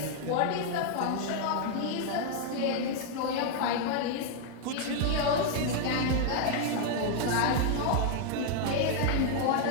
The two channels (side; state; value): both; different; correlation 0.00